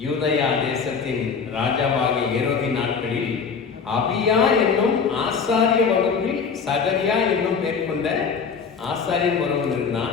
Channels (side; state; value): right; quieter; 5.8 dB